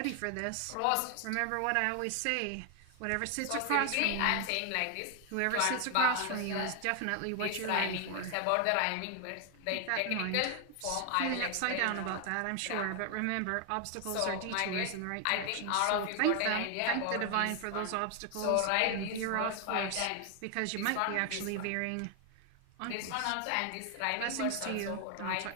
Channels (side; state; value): both; different; correlation 0.00